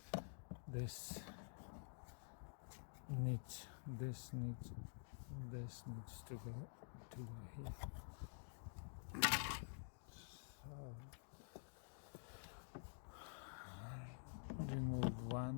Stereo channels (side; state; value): right; silent; digital silence